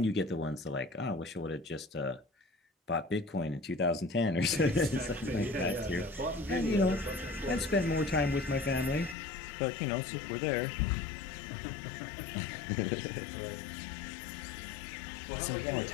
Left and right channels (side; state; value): right; drops out; at 9.2 s